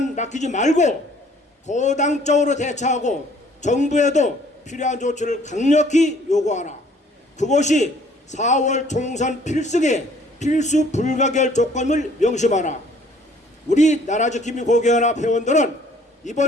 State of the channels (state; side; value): normal; both; correlation 0.58